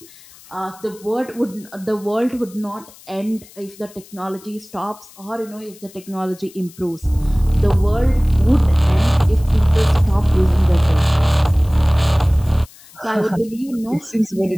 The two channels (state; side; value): noise; left; hiss, 23 dB below the sound